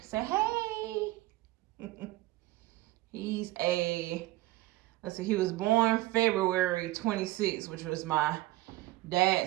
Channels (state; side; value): quieter; left; 17.9 dB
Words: Say hey. Let's see, he was born February 26th, which was my